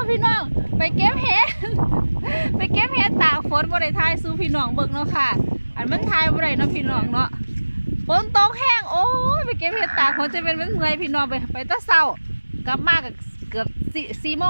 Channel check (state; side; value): inverted; both; correlation -1.00